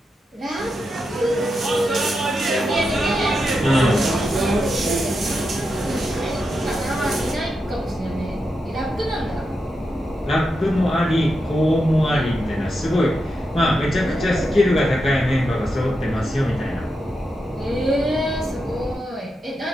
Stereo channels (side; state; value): both; normal; correlation 0.87